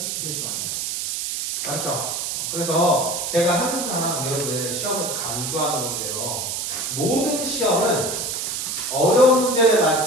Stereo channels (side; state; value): right; noise; hiss, 3 dB below the sound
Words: 틀리시면 안 돼요. 맞죠? 그래서 제가 항상 여러분들 시험에서 강조하는 건데요. 모든 시험은 어려운 문제를